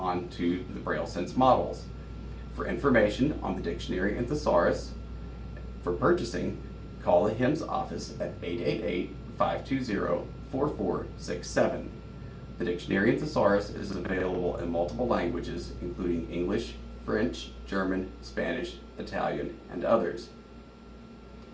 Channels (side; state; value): both; identical; correlation 1.00